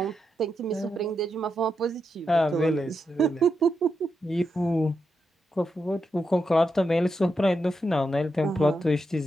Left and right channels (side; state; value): both; normal; correlation 0.85